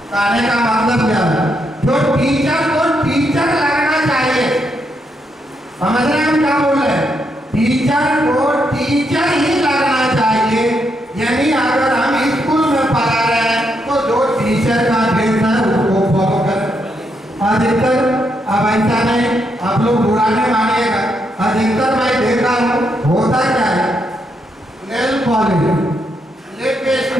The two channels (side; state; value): both; normal; correlation 0.79